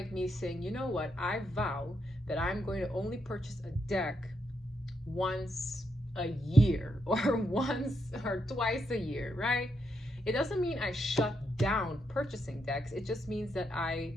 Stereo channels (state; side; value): normal; both; correlation 0.80